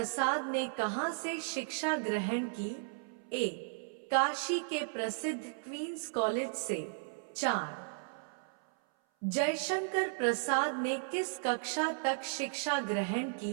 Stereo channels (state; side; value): silent; left; 54 dB below the other